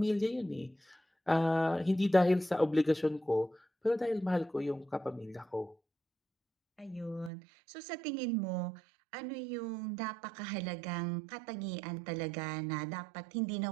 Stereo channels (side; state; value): left; drops out; at 7.3 s